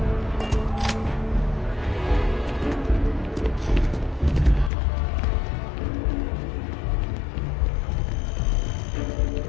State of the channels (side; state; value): right; drops out; at 4.7 s